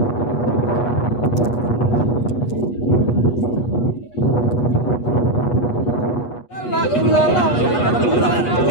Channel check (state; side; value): late; right; 8.3 ms